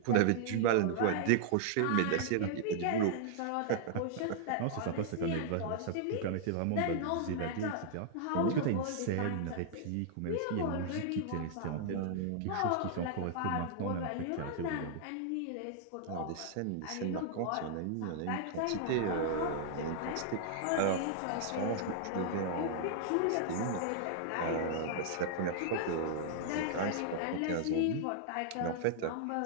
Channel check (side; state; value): both; different; correlation -0.01